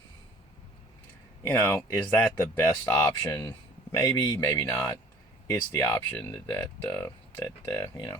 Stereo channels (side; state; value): both; normal; correlation 0.51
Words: Is that the best option? Maybe, maybe not. It's the option that